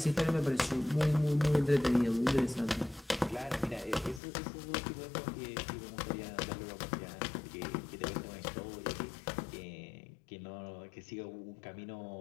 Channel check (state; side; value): drops out; right; at 4.2 s